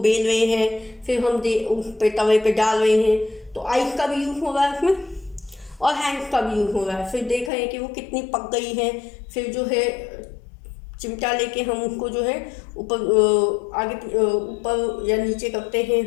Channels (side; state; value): right; drops out; at 7.5 s